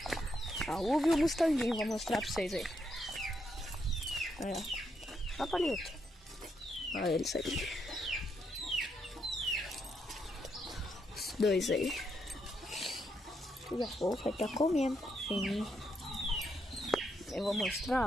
A uva e o Mustanguinho, vou mostrar pra vocês aí. Aí, ó. Ó, Palito. Olha eles aí. Os dois aí. Tudo a pouco vai estar comendo. Sim. Eu vou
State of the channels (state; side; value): normal; both; correlation 0.78